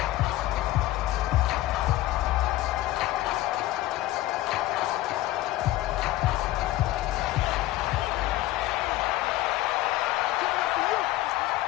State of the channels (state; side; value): quieter; right; 16.0 dB